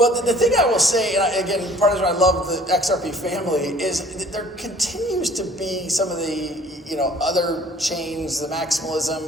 the thing I will say, and again, part of the reason I love the XRP family is that there continues to be some of the, you know, other chains, the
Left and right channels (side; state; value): both; normal; correlation 0.52